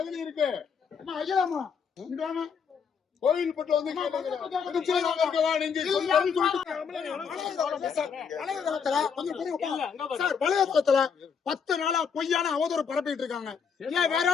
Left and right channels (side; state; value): right; quieter; 6.5 dB